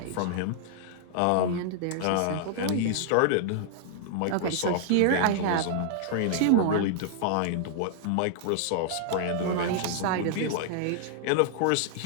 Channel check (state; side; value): different; both; correlation -0.01